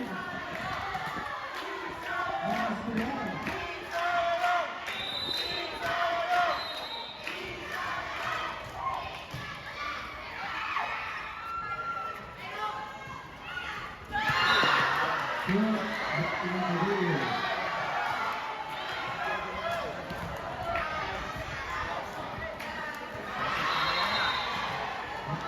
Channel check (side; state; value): both; identical; correlation 1.00